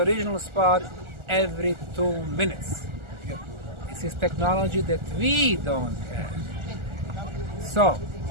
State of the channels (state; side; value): late; left; 1.4 ms